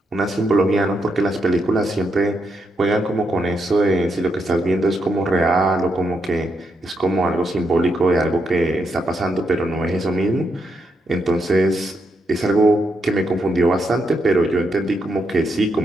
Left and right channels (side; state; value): both; normal; correlation 0.80